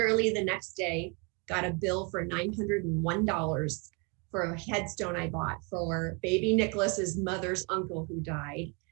the next day got a bill for $901 for a headstone I bought for baby Nicholas's mother's uncle who died.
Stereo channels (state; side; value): quieter; left; 32.5 dB